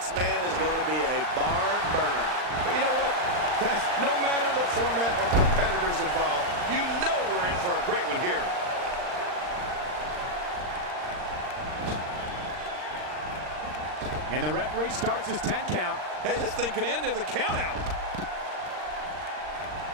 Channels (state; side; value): late; left; 39 ms